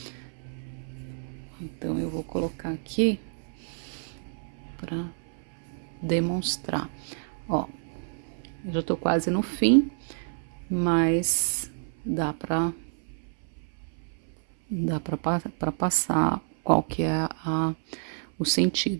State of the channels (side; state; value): left; silent; 59 dB below the other